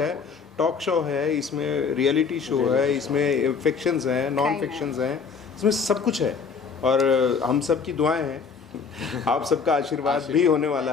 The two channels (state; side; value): quieter; right; 5.6 dB